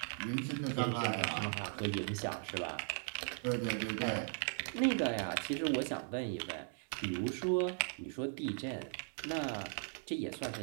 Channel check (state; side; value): silent; left; 52 dB below the other